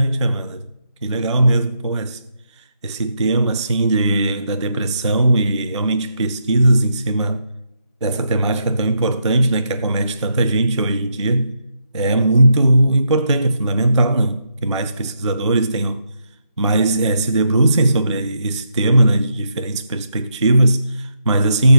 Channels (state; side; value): inverted; both; correlation -0.79